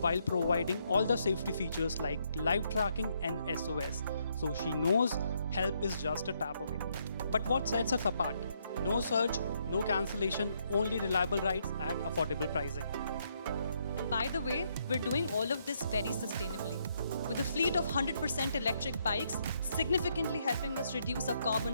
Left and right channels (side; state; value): both; inverted; correlation -0.74